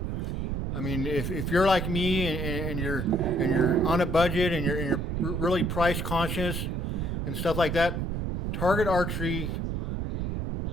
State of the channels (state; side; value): noise; right; rumble, 2 dB below the sound